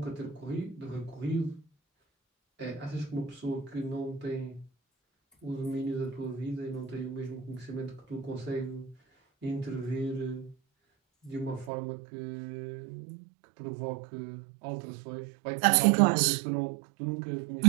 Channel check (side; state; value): left; drops out; at 11.7 s